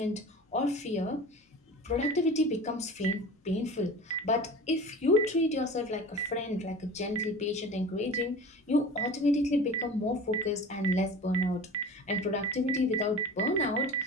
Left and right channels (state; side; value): normal; both; correlation 0.37